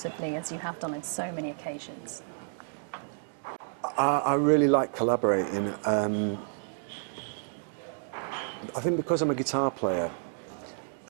as you have done on so many occasions? I really like collaborating. I think because I'm a guitar player,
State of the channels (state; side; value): silent; left; 58 dB below the other